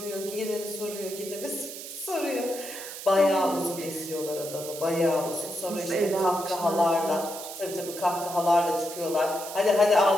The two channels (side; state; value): right; noise; hiss, 10 dB below the sound